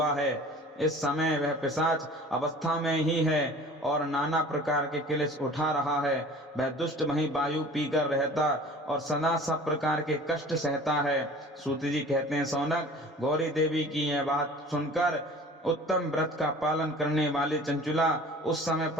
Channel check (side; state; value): both; normal; correlation 0.44